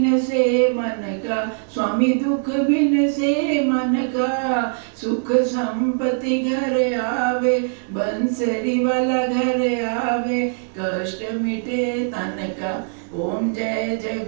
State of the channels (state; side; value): silent; left; digital silence